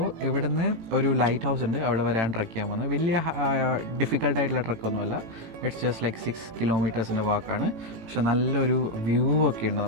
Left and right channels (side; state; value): left; late; 18 ms